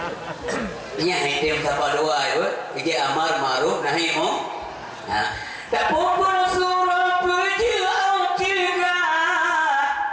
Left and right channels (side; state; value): both; identical; correlation 1.00